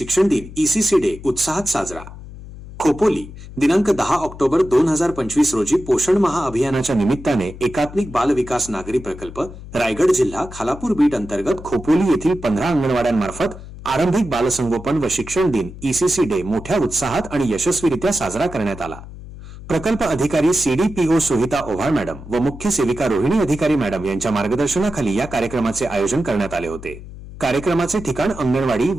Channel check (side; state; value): left; noise; hum, 14 dB below the sound